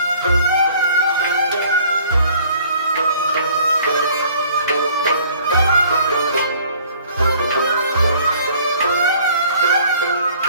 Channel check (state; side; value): inverted; both; correlation -0.55